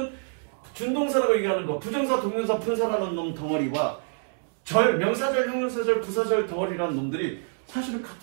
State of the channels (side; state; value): left; silent; 60 dB below the other